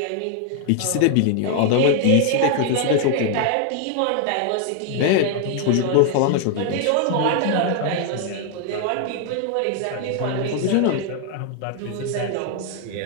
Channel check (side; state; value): both; different; correlation 0.00